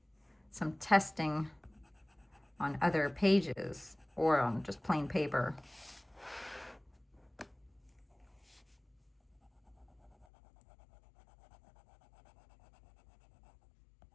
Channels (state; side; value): drops out; right; at 10.2 s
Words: some testing on other pages or on just plain paper.